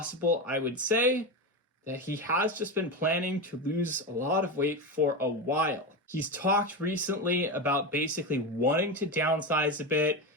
I would say, that he has just been planning to lose a lot of weight for a while. He's talked recently about basically wanting to downsize a bit,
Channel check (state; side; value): normal; both; correlation 0.17